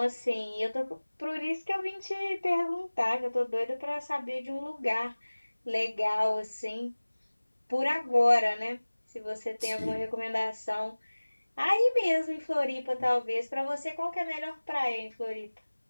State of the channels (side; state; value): both; inverted; correlation -1.00